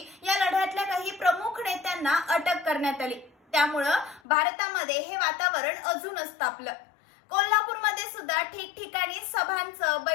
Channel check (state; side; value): drops out; right; at 4.2 s